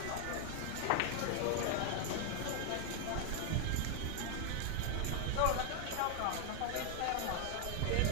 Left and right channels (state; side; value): different; both; correlation 0.00